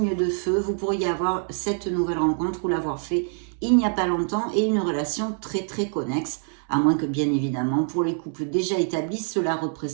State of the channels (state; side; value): silent; left; 62 dB below the other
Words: de feu, vous pourriez avoir cette nouvelle rencontre ou l'avoir fait il n'y a pas longtemps et une relation très très connexe, à moins que bien évidemment pour les couples déjà établis, cela